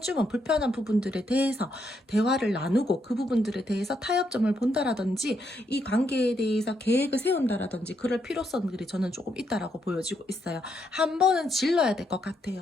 불편한 부분들에 대해서 대화를 나누고 그 부분들에 대해서 타협점을 본다라든지 이 관계에 대해서 계획을 세운다라든지 그럴 필요성들이 저는 조금 있다라고 보여지고 있어요. 한 번은 질러야 될 것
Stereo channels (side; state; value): both; normal; correlation 0.77